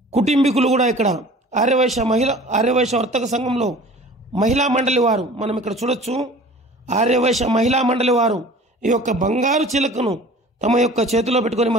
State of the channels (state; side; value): normal; both; correlation 0.44